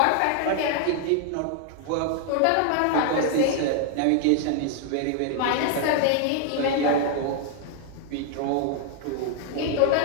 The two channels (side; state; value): both; different; correlation 0.00